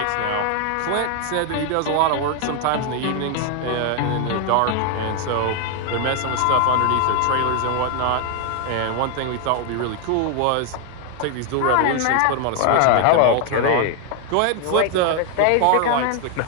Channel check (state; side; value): different; both; correlation 0.00